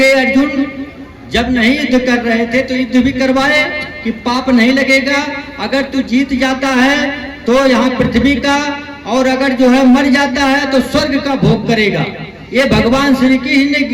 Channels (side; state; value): both; identical; correlation 1.00